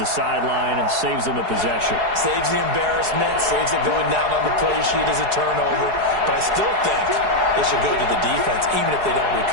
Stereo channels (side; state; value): left; late; 4.8 ms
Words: the sideline and saves them a possession. Saves the embarrassment, saves it going down on the play sheet as a turnover, but I still think they should go to the defense, even if they don't